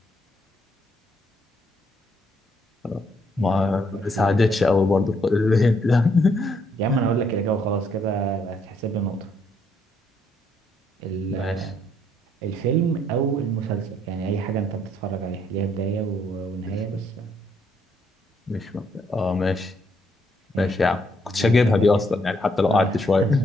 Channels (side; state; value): both; normal; correlation 0.71